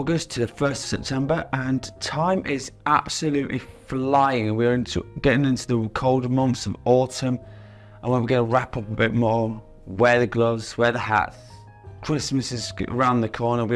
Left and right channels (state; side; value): identical; both; correlation 1.00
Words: to the 1st of September, and time is absolutely flying. We're getting into the colder months of autumn, and we're going to wrap up a bit more. Wear the gloves, wear the hats. Christmas is around the corner,